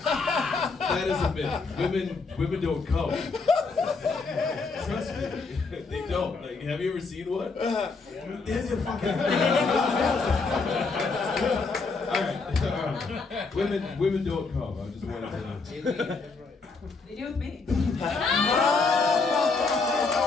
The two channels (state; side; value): quieter; right; 4.2 dB